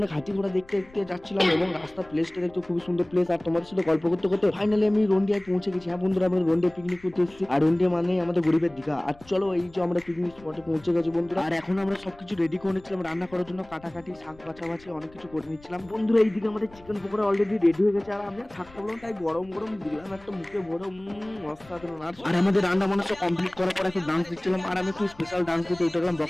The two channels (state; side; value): noise; left; rumble, 24 dB below the sound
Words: হাতি ঘোড়া দেখতে দেখতে যাচ্ছিলাম, এবং রাস্তার প্লেসটা দেখতে খুবই সুন্দর প্লেস, আর তোমাদের সাথে গল্প করতে করতে ফাইনালি আমি রন্ডিয়ায় পৌঁছে গেছি। হ্যাঁ বন্ধুরা আমরা রন্ডিয়া পিকনিক করতে এসেছি, আর রন্ডিয়া মানে আমাদের গরিবের দীঘা। আর চলো এই যে আমরা পিকনিক স্পটে পৌঁছে গেছি বন্ধুরা, আর এখন আমরা সবকিছু রেডি করে নিচ্ছিলাম রান্না করার জন্য, কাটাকাটি শাক বাছাবাছি অনেক কিছু করে নিচ্ছিলাম বন্ধুরা। এইদিকে আমাদের চিকেন পকোড়া অলরেডি রেডি হয়ে গেছে, আর আমি থাকতে বললাম তাই গরম গরম দিলাম একটা মুখে ভরে। অসাধারণ। আর আমাদের রান্না বান্না সব কমপ্লিট করার পর একটু ডান্স দিচ্ছিলাম, আর আমি একটু স্পেশাল ডান্স দিতে উঠে গেলাম